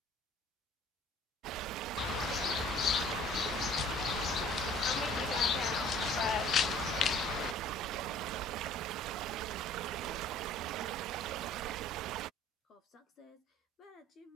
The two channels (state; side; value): normal; both; correlation 0.52